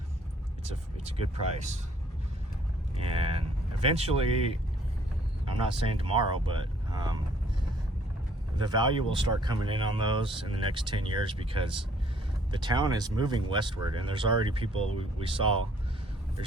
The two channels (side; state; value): both; normal; correlation 0.61